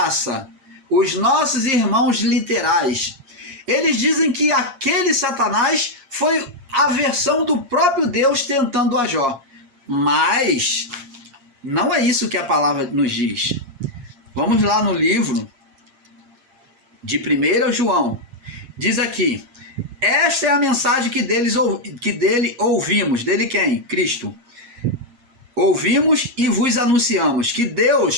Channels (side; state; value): left; late; 7.4 ms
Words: os nossos irmãos literais, eles dizem que aquele Satanás foi a versão do próprio Deus tentando a Jó. Mas não é isso que a palavra nos diz. Vamos lá no livro de 1 João. Diz aqui: esta é a mensagem que dele ouvimos. Dele quem? Cristo. Ouvimos e vos anunciamos que